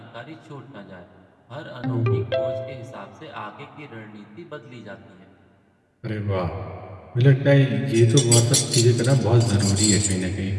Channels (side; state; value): both; identical; correlation 1.00